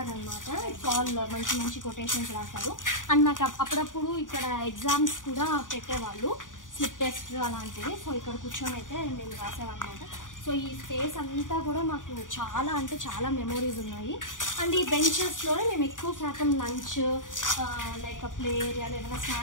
ఆల్ మంచి మంచి కొటేషన్స్ రాశారు. అండ్ నాకు అప్పుడప్పుడు ఇక్కడ ఎగ్జామ్స్ కూడా పెట్టేవాళ్ళు, స్లిప్ టెస్ట్ అలాంటివి. సో ఇక్కడ కూర్చొని అయితే మేము రాసామన్నమాట. సో ఈ స్పేస్ అంతా కూడా మాకు చాలా అంటే చాలా మెమోరీస్ ఉన్నాయి. అండ్ ఈ బెంచెస్లోనే మేము ఎక్కువ శాతం లంచ్ లైక్ ప్లే ఏరియాలో ఏమైనా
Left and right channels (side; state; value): right; late; 0.88 ms